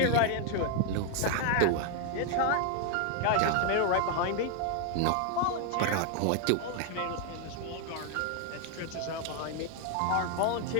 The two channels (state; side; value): different; both; correlation 0.00